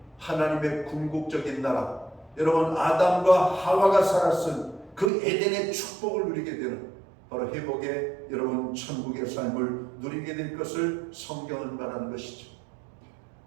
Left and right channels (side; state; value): left; drops out; at 5.1 s